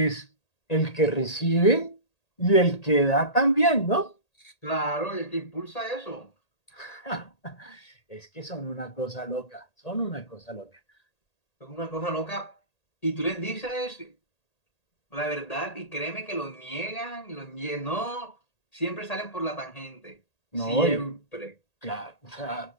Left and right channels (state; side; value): late; right; 1.8 ms